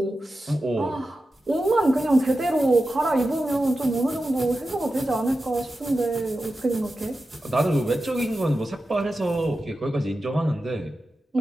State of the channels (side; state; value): both; normal; correlation 0.92